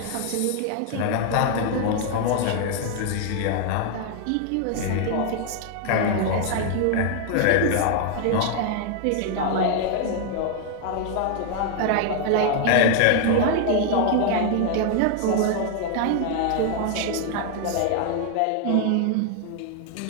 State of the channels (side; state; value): both; different; correlation 0.00